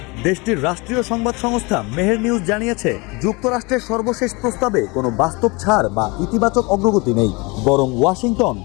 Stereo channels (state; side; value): quieter; right; 26.9 dB